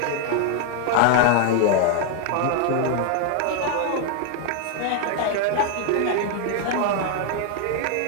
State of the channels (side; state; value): both; different; correlation 0.00